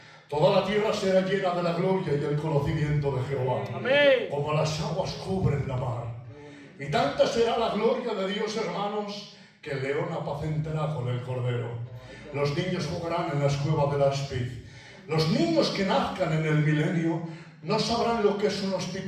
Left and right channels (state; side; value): identical; both; correlation 1.00